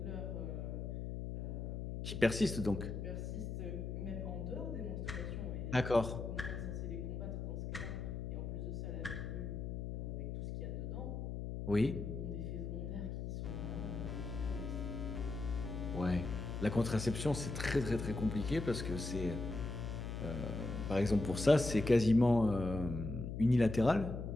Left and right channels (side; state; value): left; noise; hum, 4 dB below the sound